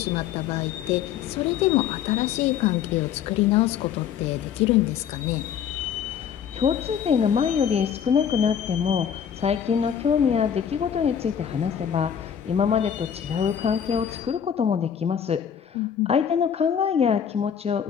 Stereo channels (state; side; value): quieter; right; 8.4 dB